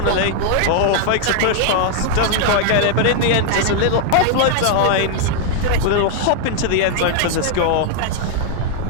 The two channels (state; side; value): different; both; correlation 0.00